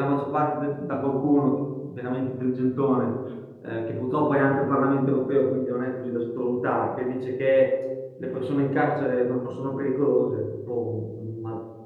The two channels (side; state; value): both; identical; correlation 1.00